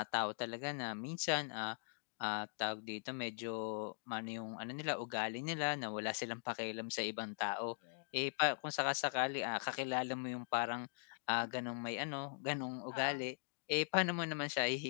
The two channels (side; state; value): right; silent; digital silence